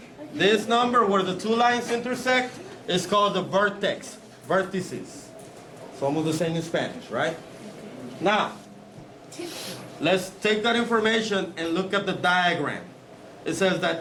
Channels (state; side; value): identical; both; correlation 1.00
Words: this number where the two lines intersect is called the vertex. Vertices. It's almost the same in Spanish, right? Now, let's take that information and look at the diagram. It says